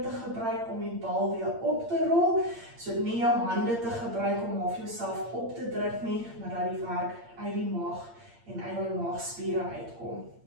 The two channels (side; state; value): left; late; 8.7 ms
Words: te gebruik om die bal weer op te rol. So nie jou hande te gebruik om of jouself op te druk nie, maar dat die werk uit die maag en uit die maagspiere uitkom.